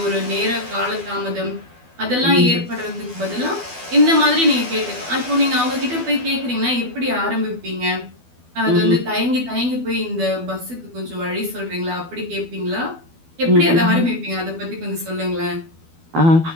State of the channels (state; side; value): late; left; 12 ms